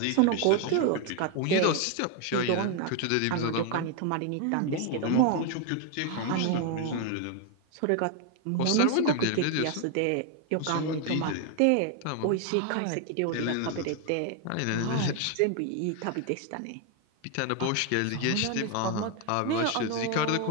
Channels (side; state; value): both; different; correlation 0.01